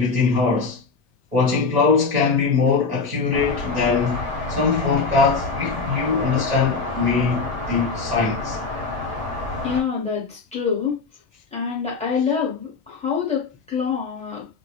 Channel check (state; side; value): quieter; right; 4.5 dB